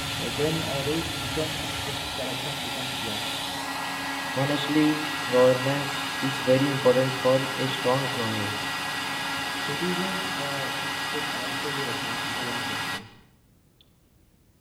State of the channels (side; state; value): both; identical; correlation 1.00